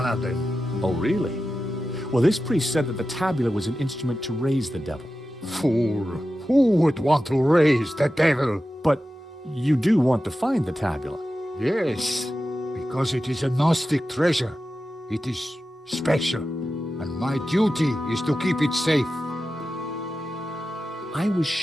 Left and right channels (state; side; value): normal; both; correlation 0.92